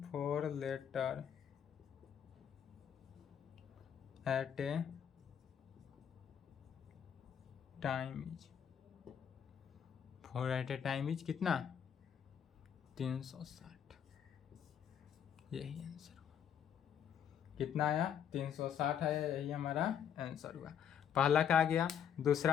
4 letter at a time is, 4 at a time is कितना? 360। यही आंसर हुआ। कितना आया 360 आया, यही हमारा आंसर हुआ। पहला का आ गया।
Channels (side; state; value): right; quieter; 8.6 dB